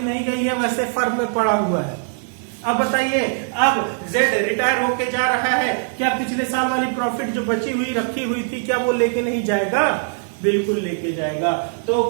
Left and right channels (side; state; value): left; silent; 62 dB below the other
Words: नहीं गई है, वैसे फर्म में पड़ा हुआ है। अब बताइए, अब जेड रिटायर होके जा रहा है, क्या पिछले साल वाली प्रॉफिट जो बची हुई रखी हुई थी क्या वो लेके नहीं जाएगा? बिल्कुल लेके जाएगा। तो